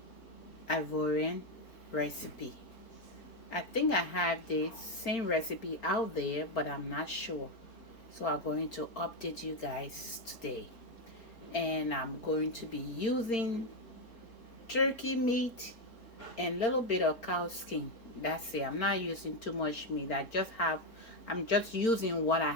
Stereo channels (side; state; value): right; late; 4.4 ms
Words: Ivorian recipe. I think I have the same recipe out there, but I'm not sure. So I'm going to update you guys today. And I'm going to be using turkey meat and a little bit of cow skin. That's it. I'm not using too much meat. I'm just using what I